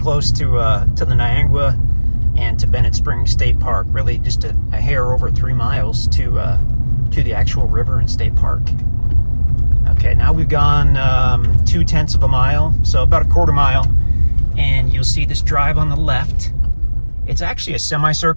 to the Niagara and to Bennett Springs State Park. Really just a hair over 3 miles to the actual river and state park. Okay, now we've gone 0.2 of a mile, so about a quarter mile, and you'll see this drive on the left. It's actually a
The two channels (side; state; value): both; inverted; correlation -1.00